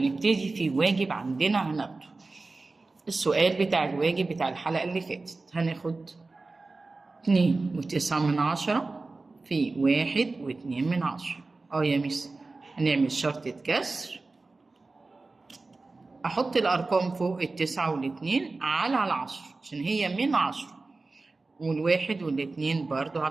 نبتدي في واجب عندنا هناخده السؤال بتاع الواجب بتاع الحلقة اللي فاتت. هناخد 2.9 في 1.2. يا ميس هنعمل شرطة كسر، أحط الأرقام فوق 9 و2 على 10 عشان هي من 10، والواحد والاتنين برضو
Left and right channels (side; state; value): left; quieter; 3.5 dB